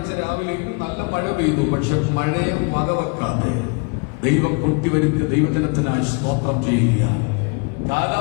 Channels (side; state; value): right; quieter; 33.2 dB